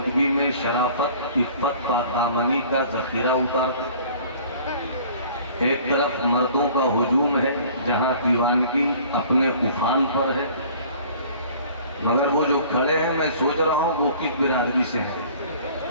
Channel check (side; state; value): both; inverted; correlation -0.50